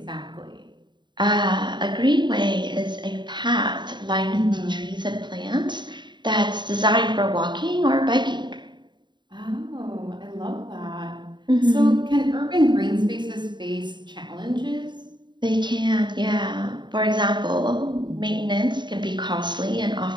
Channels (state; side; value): late; left; 0.22 ms